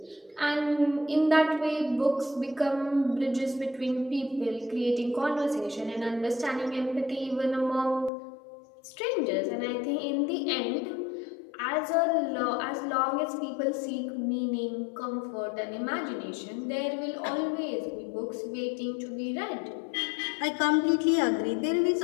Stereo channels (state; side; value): drops out; right; at 8.1 s